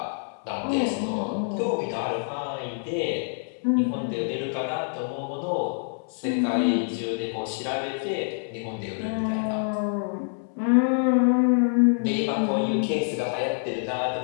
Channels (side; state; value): right; silent; digital silence